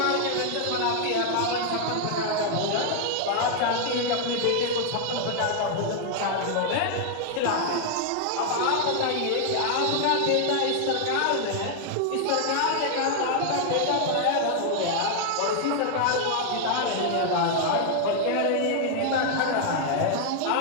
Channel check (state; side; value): different; both; correlation 0.00